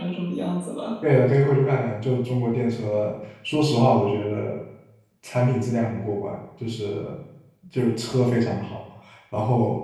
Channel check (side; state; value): both; identical; correlation 1.00